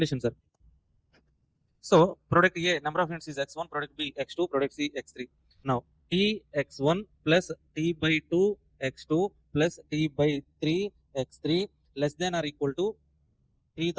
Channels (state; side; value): identical; both; correlation 1.00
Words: sir? So product A number of units is x1, product B x2, product C x3. Now T x1 plus T by 2 x2 plus T by 3 x3 less than or equal to